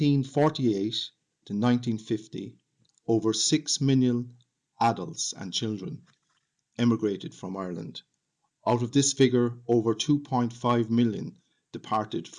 to 1950, over 6 million adults and children emigrated from Ireland. Out of this figure, over 2.5 million departed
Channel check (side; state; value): both; identical; correlation 1.00